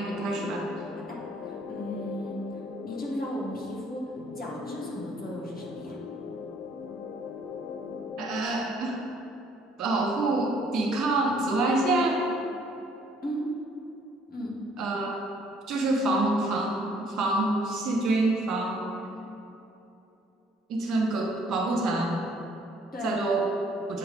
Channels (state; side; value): normal; both; correlation 0.62